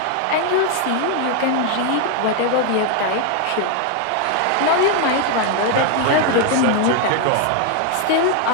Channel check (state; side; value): different; both; correlation 0.00